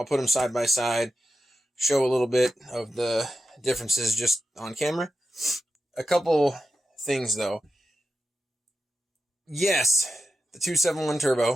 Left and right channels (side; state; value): both; normal; correlation 0.90